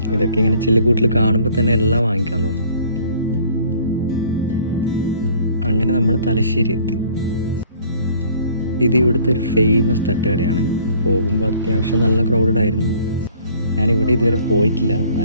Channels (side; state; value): both; inverted; correlation -0.56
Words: ഇതൊക്കെ ഇങ്ങനെ ചില്ലുകൂട്ടിൽ കാണുമ്പോൾ തന്നെ എല്ലാം വാങ്ങിക്കാൻ തോന്നും. അങ്ങനെ നമ്മൾ തലശ്ശേരി എത്തി. ഇത് ഇവിടുത്തെ ഒരു ഫേമസ് തട്ടുകടയാണ്. പോകുമ്പോൾ അത്യാവശ്യം നല്ല ക്രൗഡഡ് ആയിരുന്നു. ഞാനിവിടെ ഇതുവരെ പോയിട്ടില്ല,